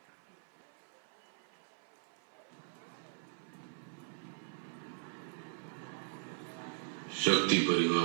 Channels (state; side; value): silent; left; 52 dB below the other